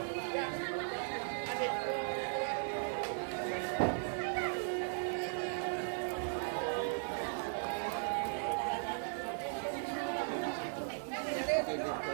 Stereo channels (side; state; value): left; silent; 53 dB below the other